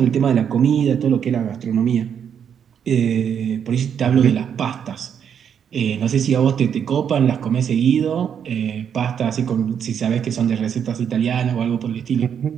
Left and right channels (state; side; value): quieter; left; 8.1 dB